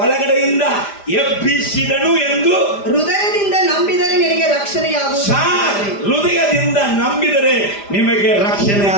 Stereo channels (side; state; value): right; late; 5.0 ms